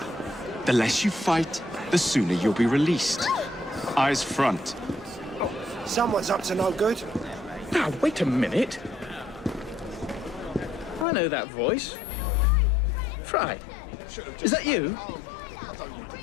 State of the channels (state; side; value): drops out; right; at 11.1 s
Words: The less you fight, the sooner you'll be released. Eyes front. Someone's up to no good. Now, wait a minute. I know that voice. Frye. Is that you?